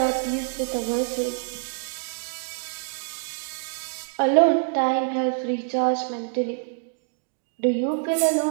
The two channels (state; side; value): silent; left; digital silence